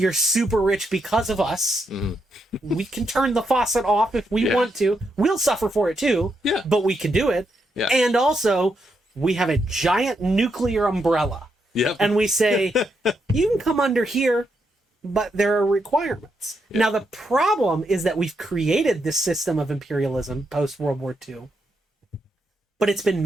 super rich because of us. Mm-hmm. We can turn the faucet off if we want to. We'll suffer for it too. Yeah. But we can do it. Yeah. And also, we have a giant nuclear umbrella. Yep. And we say, you can come under here, but there are requirements. Yep. Now, the problem is that we've created this system of imperialism post-World War II, but it's been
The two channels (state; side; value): normal; both; correlation 0.81